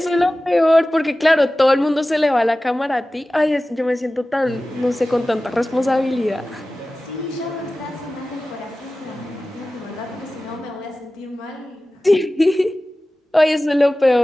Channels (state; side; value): normal; both; correlation 0.96